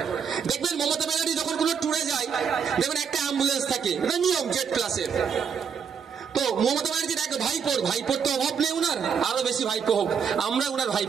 দেখবেন মমতা ব্যানার্জি যখন কোনো ট্যুরে যায় দেখবেন একটা অ্যাম্বুলেন্স থাকে, এটা নিয়ম জেড প্লাসের। তো মমতা ব্যানার্জির এক ভাইপোর তো অভাব নেই উনার, আরো বেশি ভাইপো হোক। আমরা উনার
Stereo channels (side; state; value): left; quieter; 6.9 dB